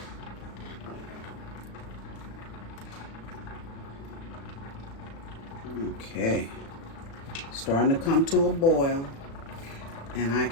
Okay. Starting to come to a boil. And I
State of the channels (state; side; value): late; right; 36 ms